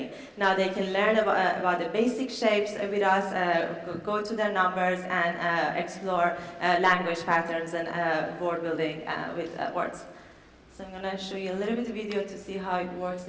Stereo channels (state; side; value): identical; both; correlation 1.00